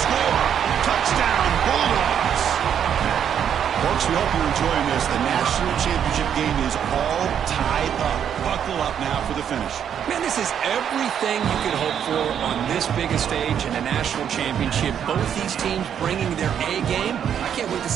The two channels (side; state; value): left; quieter; 8.8 dB